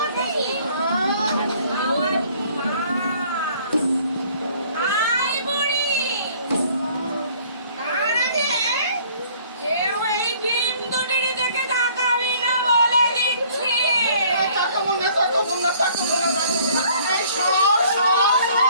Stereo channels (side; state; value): both; inverted; correlation -0.57